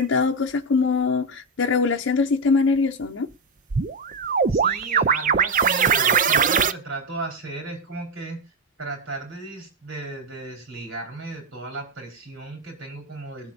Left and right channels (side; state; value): both; normal; correlation 0.07